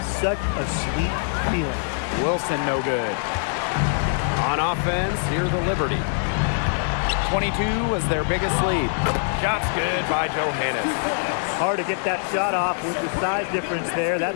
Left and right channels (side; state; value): right; silent; digital silence